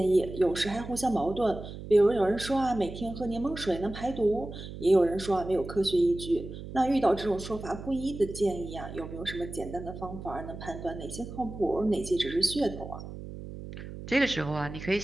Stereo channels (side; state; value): right; noise; hum, 11 dB below the sound